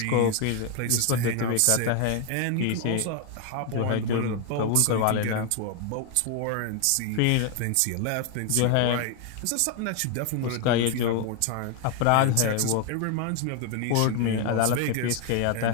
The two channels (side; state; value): both; different; correlation 0.00